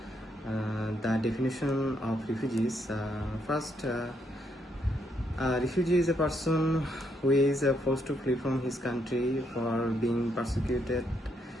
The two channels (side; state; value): both; normal; correlation 0.75